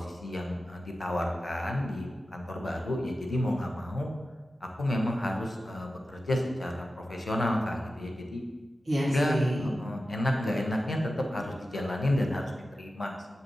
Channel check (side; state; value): both; normal; correlation 0.93